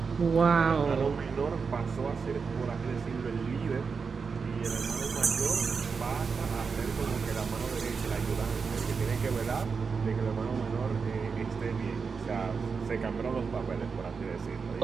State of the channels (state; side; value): quieter; left; 5.3 dB